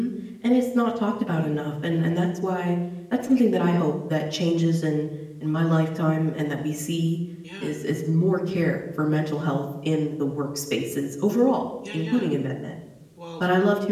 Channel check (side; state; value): both; identical; correlation 1.00